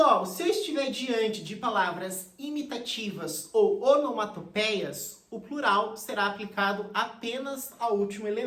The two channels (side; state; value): both; identical; correlation 1.00